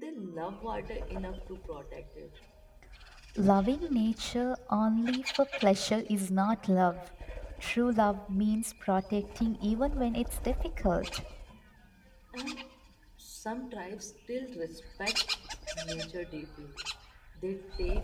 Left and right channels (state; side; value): identical; both; correlation 1.00